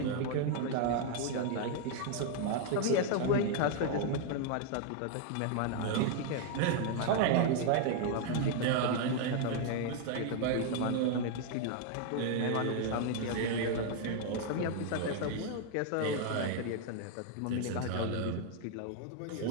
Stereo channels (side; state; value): both; different; correlation 0.00